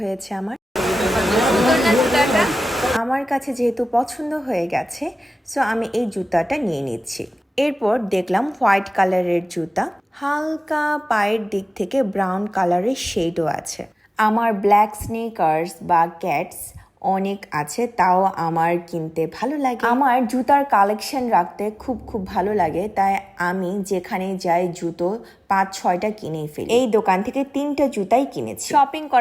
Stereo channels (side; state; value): both; normal; correlation 0.97